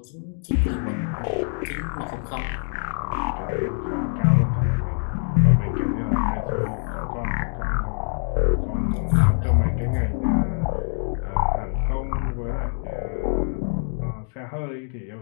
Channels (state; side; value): silent; right; digital silence